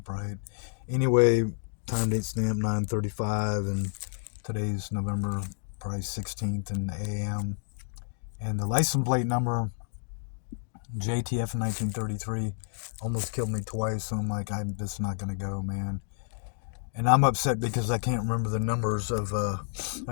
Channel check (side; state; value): right; silent; digital silence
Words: right? Anyway, time date stamp 9:35, and today's November probably 16th in the AM, and the license plate number jtr1933 almost killed me twice. So I'm like, I'm just not gonna go, man. And I'm upset because I can't remember the numbers of